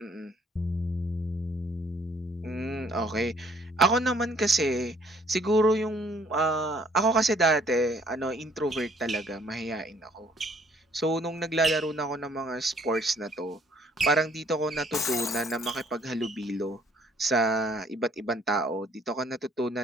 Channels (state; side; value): normal; both; correlation 0.62